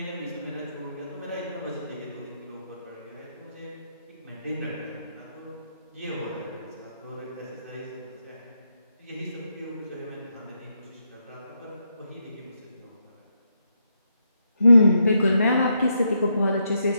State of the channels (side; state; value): both; inverted; correlation -0.80